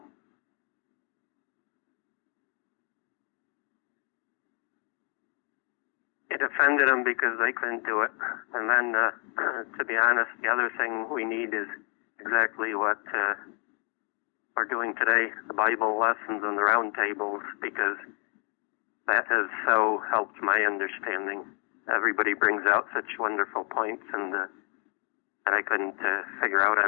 It offended them because they couldn't do it. And then, to be honest, the other thing we need is exactly what we're doing today, the Bible lessons and the round tables, because that has so helped my understanding. Everybody brings out such wonderful points and that I couldn't figure out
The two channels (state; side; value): quieter; right; 38.3 dB